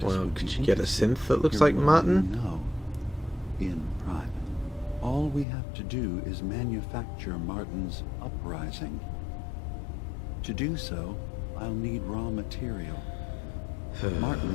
Well, would be could you get a interested synth that looks hearing like what Martin? you know in private. All we have to do is manufacture Martin's uprising. To do so, I'll need raw material.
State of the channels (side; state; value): right; drops out; at 5.5 s